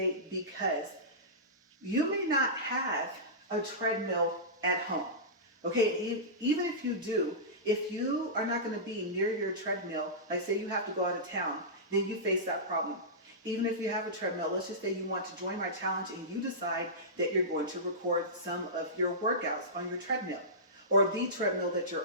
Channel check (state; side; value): normal; both; correlation -0.18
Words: Because you may not have a treadmill at home. Okay, even if you do, If you are not going to be near your treadmill, like say you have to go out of town, then you face that problem. Even if you have a treadmill, let's just say you want to join my challenge and you decide that you're going to record some of your workouts on your treadmill or the treadmill that